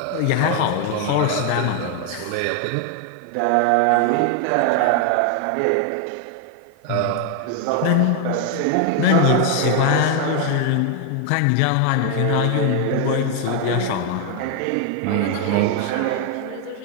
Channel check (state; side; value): different; both; correlation 0.01